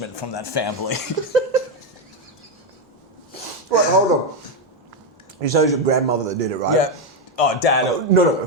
from that family. Wait, hold on. You say it was your grandmother that did it, right? Yeah. Oh, Dad. Oh, no.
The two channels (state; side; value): normal; both; correlation 0.06